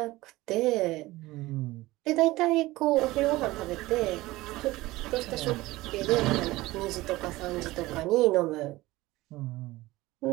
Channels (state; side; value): quieter; left; 18.7 dB